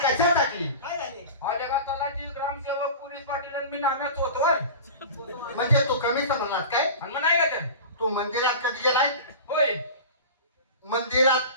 कशासाठी? काय झाले? हा जगात तलाठी ग्रामसेवक पोलीस पाटील आणि मी नाम्यात होतोय. म्हणजे तू कमी समजलास काय? आणि मग नाही का ते तू मंदिरात कधी गेलाय? होय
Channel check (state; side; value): inverted; both; correlation -0.33